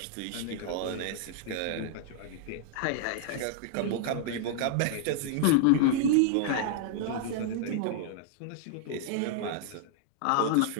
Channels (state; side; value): different; both; correlation -0.01